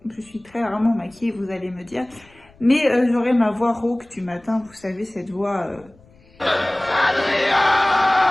je suis très rarement maquillée, vous allez me dire. Mais j'aurai ma voix rauque du matin, vous savez, cette voix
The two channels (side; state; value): left; noise; rumble, 29 dB below the sound